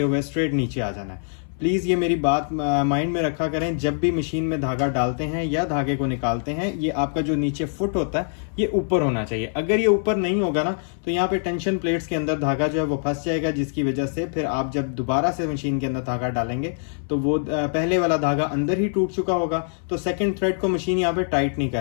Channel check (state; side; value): silent; right; 60 dB below the other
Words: हुए स्ट्रेट नीचे आ जाना है। प्लीज़ ये मेरी बात माइंड में रखा करें, जब भी मशीन में धागा डालते हैं या धागे को निकालते हैं, ये आपका जो नीचे फुट होता है ये ऊपर होना चाहिए। अगर ये ऊपर नहीं होगा ना तो यहाँ पे टेंशन प्लेट्स के अंदर धागा जो है वो फंस जाएगा, जिसकी वजह से फिर आप जब दोबारा से मशीन के अंदर धागा डालेंगे तो वो पहले वाला धागा अंदर ही टूट चुका होगा, तो सेकेंड थ्रेड को मशीन यहाँ पे टाइट नहीं